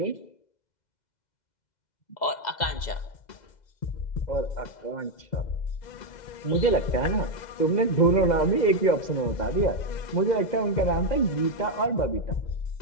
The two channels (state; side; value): late; right; 2.0 ms